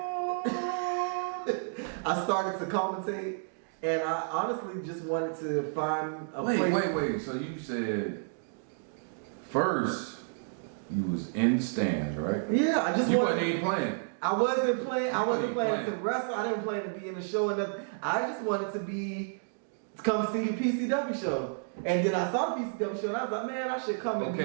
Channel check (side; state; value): left; silent; digital silence